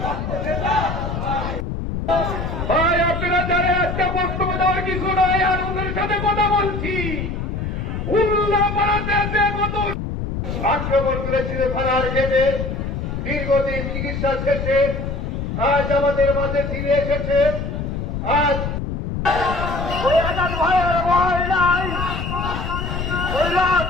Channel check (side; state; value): left; noise; rumble, 4 dB below the sound